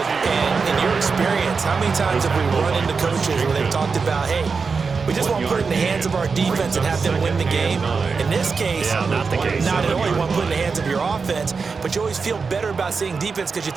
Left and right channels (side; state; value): left; quieter; 5.0 dB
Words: And in your experience, how many times have we run into coaches where they've talked about, hey, we just want to put it in the hands of our defense and have them win the game? In this case, not the case. Not at all. You want to put it in the hands of your offense, but you always feel better about seeing defense because you